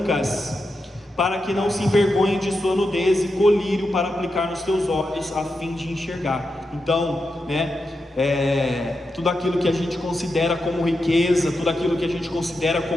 para que não se envergonhe de sua nudez, e colírio para aplicar nos teus olhos, a fim de enxergar. Então, né, tudo aquilo que a gente considera como riqueza, tudo aquilo que a gente considera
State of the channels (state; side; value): normal; both; correlation 0.87